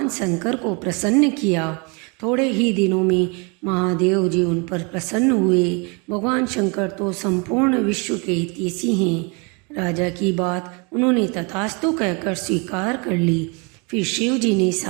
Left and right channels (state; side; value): quieter; left; 31.8 dB